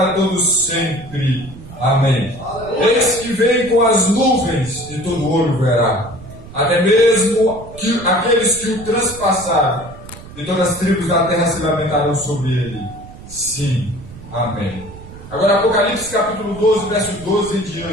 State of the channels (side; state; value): right; noise; rumble, 16 dB below the sound